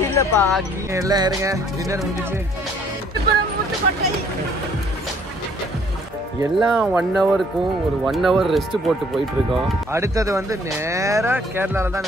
இல்லப்பா, எல்லாம் இருங்க. டின்னர் முடிஞ்சிச்சு. எல்லாம் 1 ஹவருக்கும் ஒரு 1 ஹவர் ரெஸ்ட் போட்டு போயிட்டு இருக்கோம். அடுத்தது வந்து நேரா கேரளால தான்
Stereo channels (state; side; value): normal; both; correlation 0.61